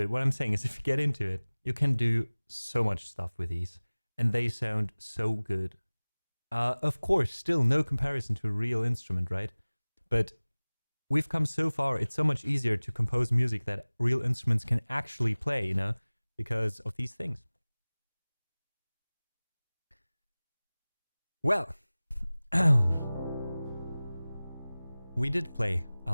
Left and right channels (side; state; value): both; inverted; correlation -0.99